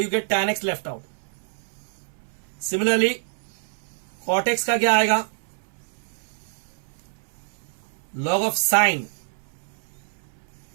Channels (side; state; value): left; silent; 61 dB below the other